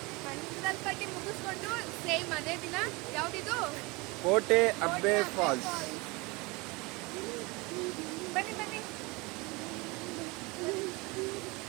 ಮಂಡಲ್ಪಟ್ಟಿ ಮುಗಿಸ್ಕೊಂಡು ಸೇಮ್ ಅದೇ ದಿನ ಯಾವುದಿದು ಕೋಟೆ ಅಬ್ಬೆ ಫಾಲ್ಸ್. ಬನ್ನಿ ಬನ್ನಿ.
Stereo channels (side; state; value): left; quieter; 25.4 dB